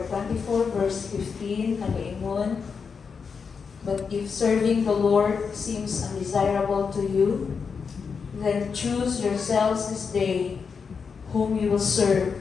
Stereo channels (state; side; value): quieter; right; 5.7 dB